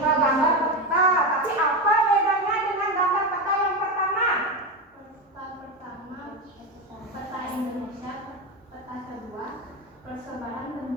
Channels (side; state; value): both; normal; correlation 0.16